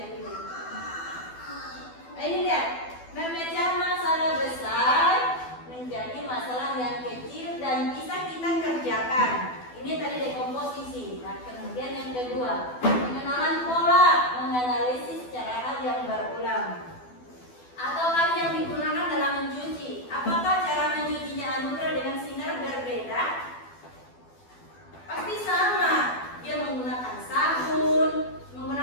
dulu. Ini lihat, memecah masalah besar menjadi masalah yang kecil dan bisa kita kerjakan. Ini tadi dekomposisi. Nah, kemudian yang kedua, pengenalan pola, menganalisis cara hal yang berulang. Atau hal yang digunakan dalam mencuci. Apakah cara mencucinya Anugrah dengan Sinar berbeda? Pasti sama. Dia menggunakan sabun,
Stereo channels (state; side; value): late; right; 12 ms